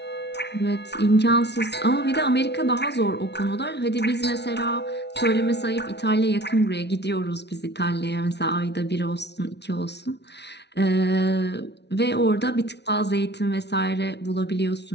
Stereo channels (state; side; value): late; right; 0.50 ms